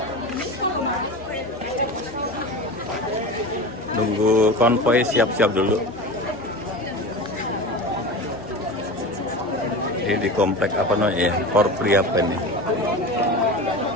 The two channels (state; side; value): normal; both; correlation 0.30